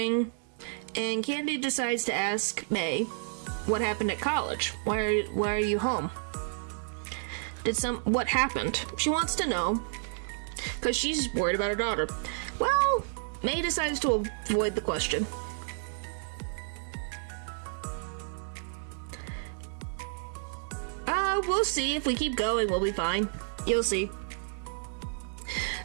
and Candy decides to ask May what happened at college. Why are you home? What happened? She wants to know, because she's worried about her daughter. Well, May decides to avoid the question. We'll see. If we keep going, we'll be fine. You'll see.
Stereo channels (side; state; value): left; silent; digital silence